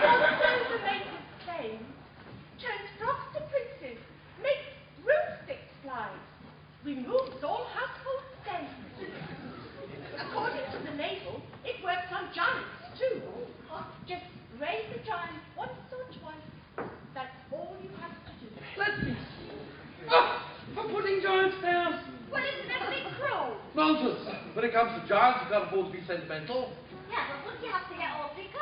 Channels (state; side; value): identical; both; correlation 1.00